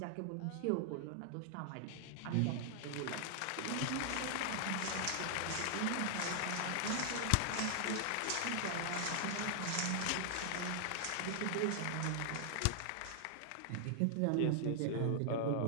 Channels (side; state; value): both; different; correlation -0.01